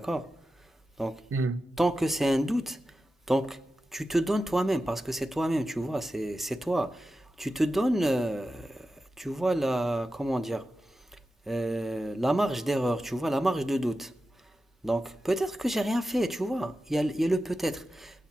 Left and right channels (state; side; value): normal; both; correlation 0.92